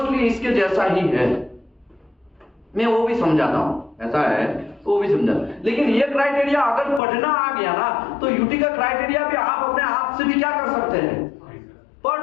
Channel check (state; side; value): drops out; right; at 7.0 s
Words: इसके जैसा ही है। मैं वो भी समझाता हूँ, ऐसा है वो भी समझा, लेकिन ये क्राइटेरिया अगर पढ़ना आ गया ना तो यूटी का क्राइटेरिया भी आप अपने आप से भी क्या कर सकते हैं?